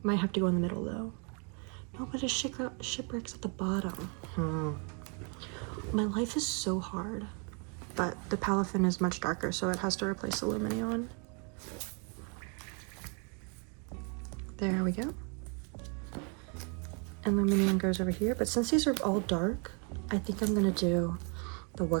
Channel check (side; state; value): left; quieter; 37.0 dB